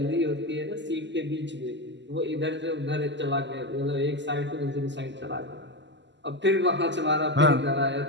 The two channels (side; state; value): left; late; 0.52 ms